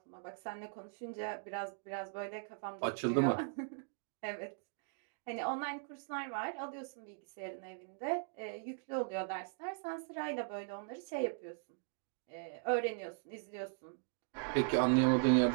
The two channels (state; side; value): silent; left; digital silence